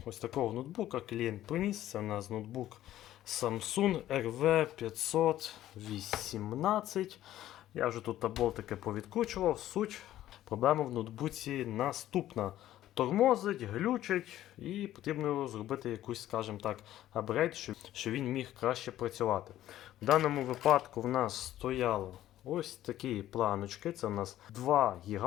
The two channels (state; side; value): quieter; right; 13.3 dB